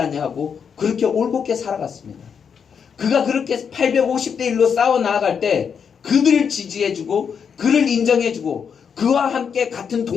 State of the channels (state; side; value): quieter; right; 6.9 dB